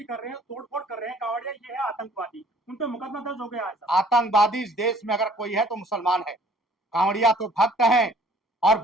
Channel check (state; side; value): normal; both; correlation 0.56